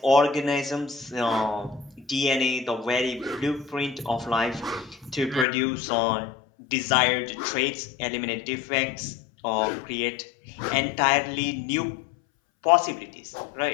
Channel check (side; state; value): right; drops out; at 5.5 s